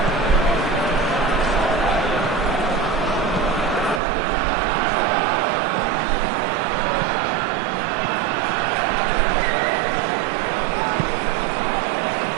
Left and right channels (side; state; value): left; drops out; at 4.0 s